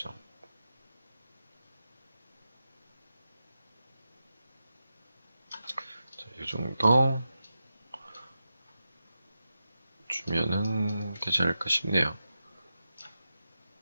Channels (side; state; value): both; inverted; correlation -0.90